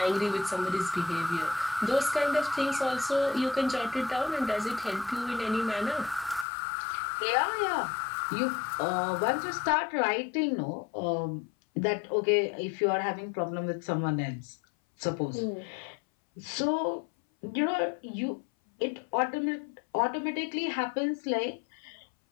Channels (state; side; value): drops out; right; at 6.5 s